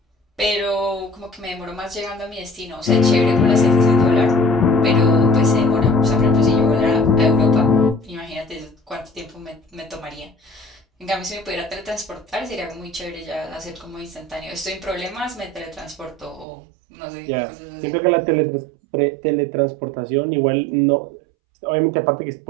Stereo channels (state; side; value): drops out; left; at 16.4 s